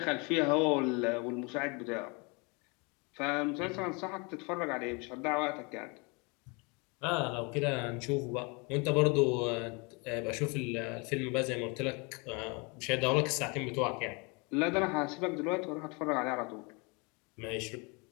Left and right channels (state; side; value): quieter; right; 30.1 dB